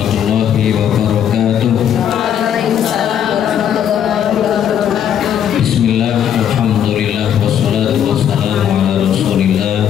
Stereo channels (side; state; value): right; quieter; 9.4 dB